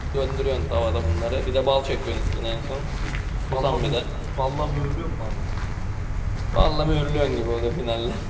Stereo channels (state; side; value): identical; both; correlation 1.00